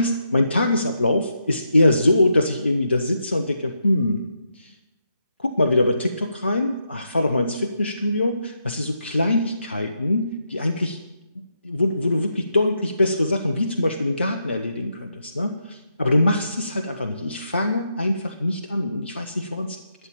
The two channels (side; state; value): both; inverted; correlation -0.81